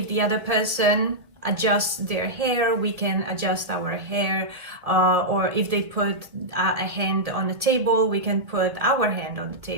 the other person adjusts their hair, we can adjust our hair, or if they put a hand on the table, we can put our hand on the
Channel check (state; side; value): late; left; 1.8 ms